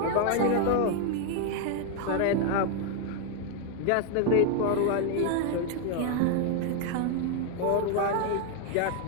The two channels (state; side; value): different; both; correlation 0.00